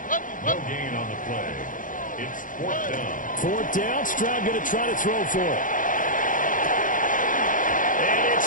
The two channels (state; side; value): late; right; 0.39 ms